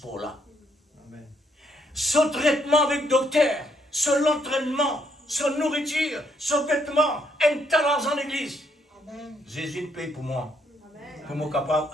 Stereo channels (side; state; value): both; normal; correlation 0.72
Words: là. Son traitement avec le docteur, son entraînement, son nourriture, son vêtement, un talent en l'église. Jésus paye pour moi. Pour moi capable